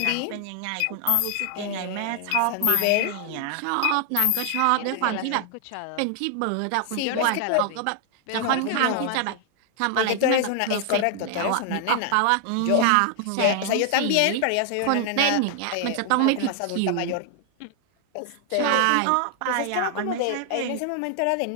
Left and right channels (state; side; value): different; both; correlation 0.00